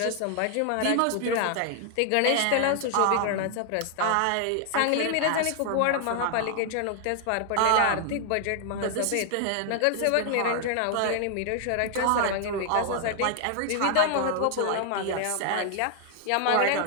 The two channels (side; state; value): both; different; correlation 0.00